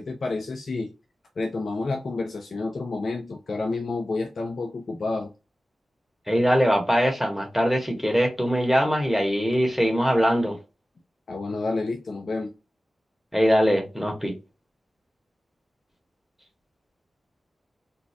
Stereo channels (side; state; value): both; normal; correlation 0.95